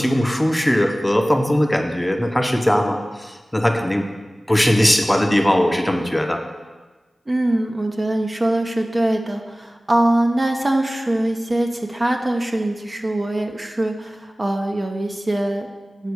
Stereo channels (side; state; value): both; normal; correlation 0.98